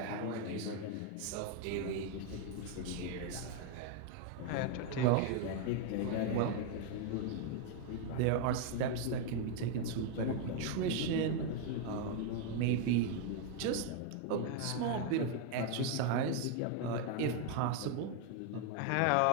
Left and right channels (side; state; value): both; different; correlation 0.01